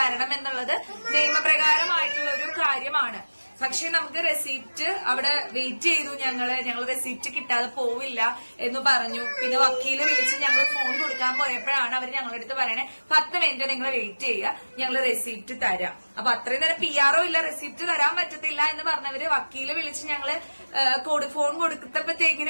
എന്നുള്ളത് നിയമപ്രകാരമായിട്ടുള്ള ഒരു കാര്യമാണ്. പക്ഷെ നമുക്ക് റെസീപ്റ്റ് അവിടെ വെയിറ്റ് ചെയ്തു. ഞങ്ങൾ റെസീപ്റ്റ് കിട്ടാതെ പോവില്ല എന്ന് പറഞ്ഞു. പിന്നെ വക്കീല് വിളിച്ച് ഞങ്ങൾ ഫോൺ കൊടുക്കാൻ പോയപ്പോഴാണ് അവർ ഞങ്ങളുടെ അടുത്ത് പറയണേ 10 മിനിറ്റ് നിങ്ങൾ വെയിറ്റ് ചെയ്യുക, ഞങ്ങൾ റെസീപ്റ്റ് തരാം. അപ്പൊ അത്രയും നേരം PR ഇല്ല, റെസീപ്റ്റ് തരാൻ പറ്റത്തില്ല എന്ന് പറഞ്ഞവര് വക്കീല് വിളിച്ച് ഞങ്ങള് ഫോൺ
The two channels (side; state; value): both; inverted; correlation -1.00